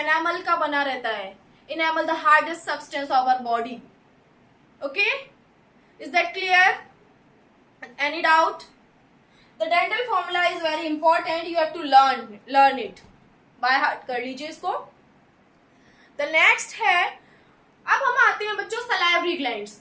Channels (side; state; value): both; identical; correlation 1.00